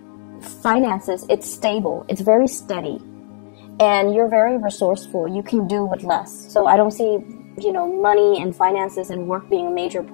finances, it's stable, it's very steady, and you're very resourceful. You can do with less. So I don't see, you know, money and finances and work being a major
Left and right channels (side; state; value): right; silent; digital silence